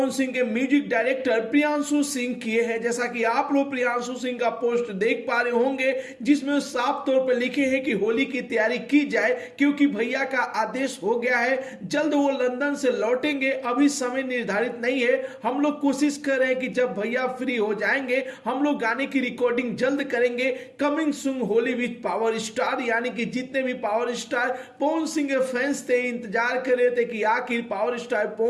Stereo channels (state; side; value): identical; both; correlation 1.00